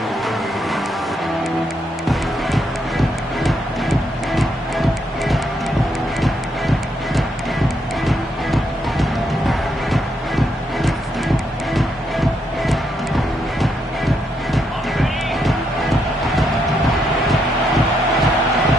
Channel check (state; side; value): normal; both; correlation 0.77